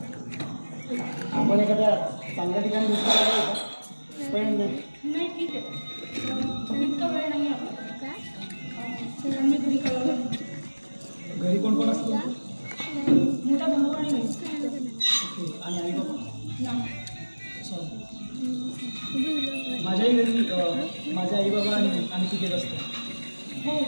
आपण एखाद्या चांगल्या ठिकाणी बसलेलं जाऊ, पण नाही ठीक आहे. इतका वेळ नाही आपला. मी घरी कळवलं. घरी कोण कोण असतं? मोठा भाऊ आणि मी. आणि आई बाबा? नाही. माझ्याही घरी माझे आई बाबा आणि तिघेच असतं. हो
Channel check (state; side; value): inverted; both; correlation -1.00